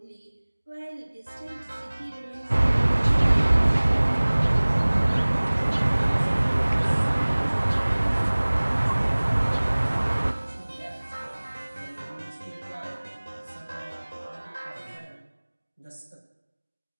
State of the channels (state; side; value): inverted; both; correlation -1.00